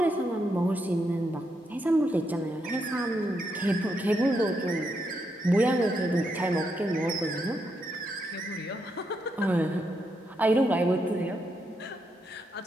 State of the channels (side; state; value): both; normal; correlation 0.80